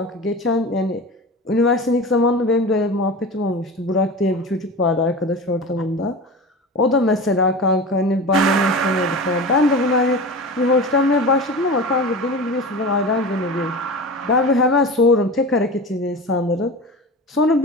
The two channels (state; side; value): normal; both; correlation 0.31